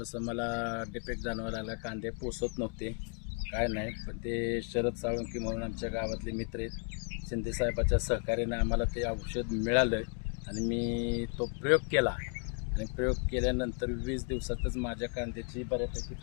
मला डिफेक्ट जाणवायला लागला. कांदे पोसत नव्हते, काय नाही. पण ते शरद साळुंके म्हणून आमच्या गावातले मित्र आहेत, शिंदेसाहेबाच्या सहकार्याने आम्हाला ते औषध मिळालं आणि मी तो प्रयोग केला. आणि प्रयोग केल्यानंतर 20 दिवसातच माझ्या कांद्याची बऱ्यापैकी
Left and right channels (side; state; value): right; quieter; 38.5 dB